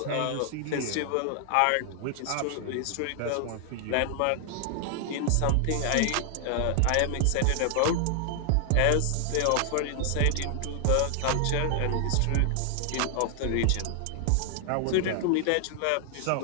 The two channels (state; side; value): different; both; correlation 0.00